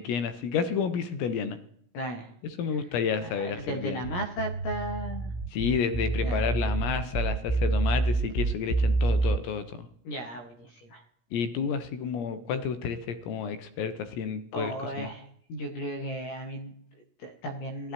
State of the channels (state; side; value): late; right; 17 ms